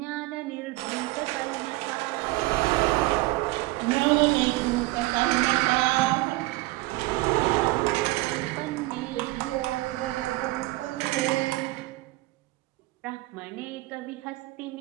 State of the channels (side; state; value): left; quieter; 20.5 dB